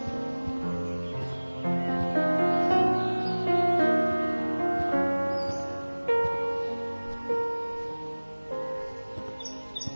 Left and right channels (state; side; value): inverted; both; correlation -1.00